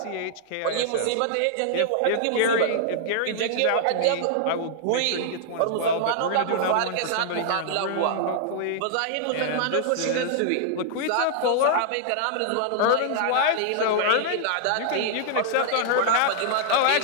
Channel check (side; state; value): both; different; correlation -0.01